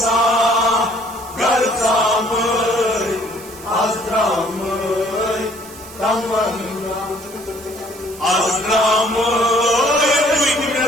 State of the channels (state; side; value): noise; right; hiss, 18 dB below the sound